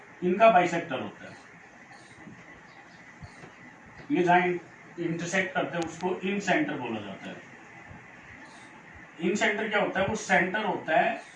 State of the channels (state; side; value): identical; both; correlation 1.00